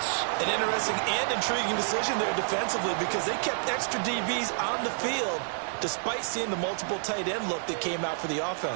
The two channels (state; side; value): silent; left; 59 dB below the other